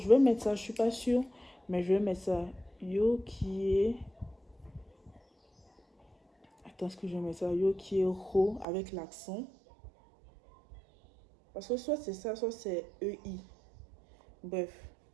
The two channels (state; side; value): drops out; left; at 8.7 s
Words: vais mettre ça, je suis pas sûre, mais je vais mettre ça. Yo qui est. Attends, est-ce que je vais mettre ça? Yo qui est ro avec l'accent. Parce que soit c'est ça, soit c'est EI. Bref.